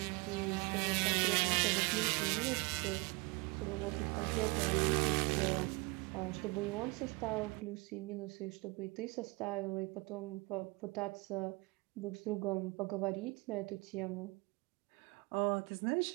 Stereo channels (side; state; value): left; quieter; 26.3 dB